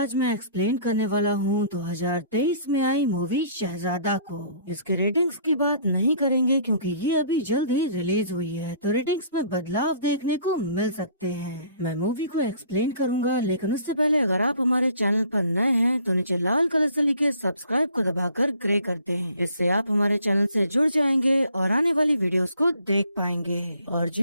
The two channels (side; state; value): both; inverted; correlation -0.55